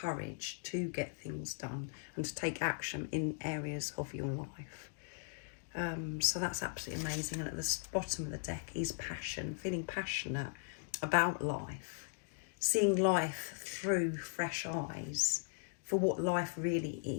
to get things done and to take action in areas of your life. So that's absolutely amazing. And at the bottom of the deck is passion, feeling passionate about life, seeing life through fresh eyes for what life really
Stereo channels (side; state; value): right; silent; digital silence